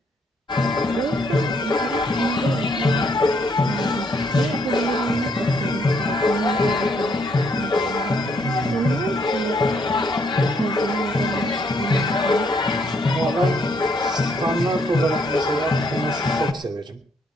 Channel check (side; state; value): both; normal; correlation 0.71